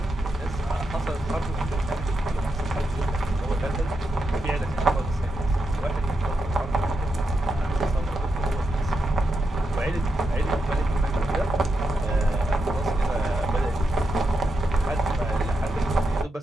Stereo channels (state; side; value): normal; both; correlation 0.85